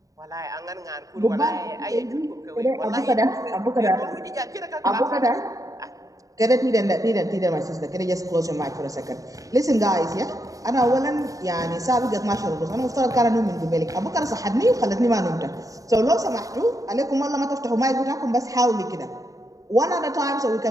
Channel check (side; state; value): left; late; 0.16 ms